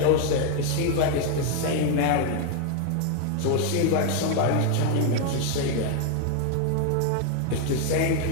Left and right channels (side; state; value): both; different; correlation 0.00